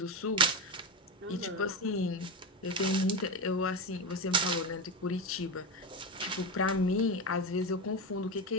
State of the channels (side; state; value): both; normal; correlation 0.16